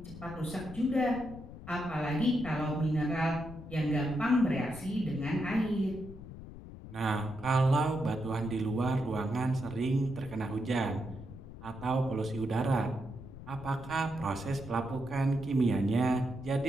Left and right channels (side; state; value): left; noise; rumble, 14 dB below the sound